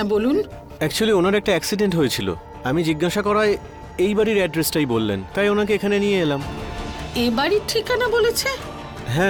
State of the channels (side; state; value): both; identical; correlation 1.00